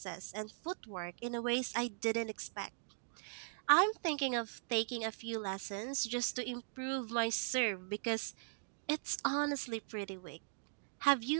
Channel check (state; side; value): silent; left; digital silence